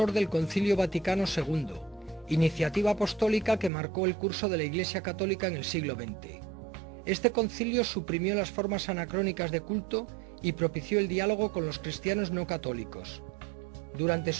del Concilio Vaticano II, iniciativa apostólica que marcó el curso de la Iglesia Católica en el siglo XX. Este concilio suprimió las formas anacrónicas de culto y propició el diálogo con los cristianos no católicos. Durante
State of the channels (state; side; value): drops out; left; at 3.7 s